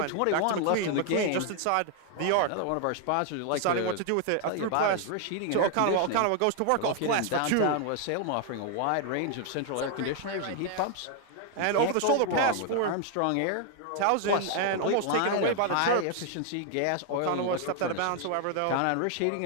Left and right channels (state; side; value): different; both; correlation 0.00